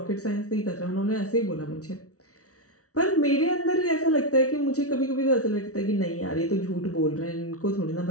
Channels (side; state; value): right; late; 0.66 ms